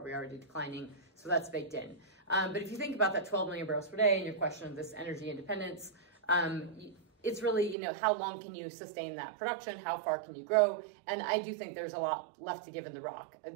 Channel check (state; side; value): drops out; left; at 7.8 s